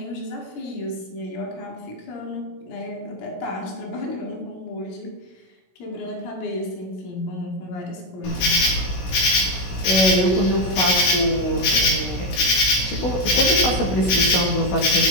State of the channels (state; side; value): late; right; 16 ms